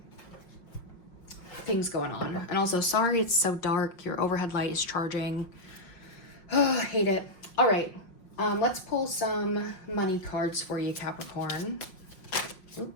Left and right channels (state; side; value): late; right; 5.6 ms